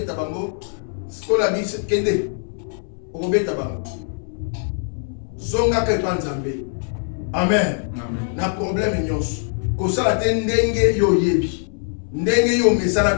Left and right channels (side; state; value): right; silent; 64 dB below the other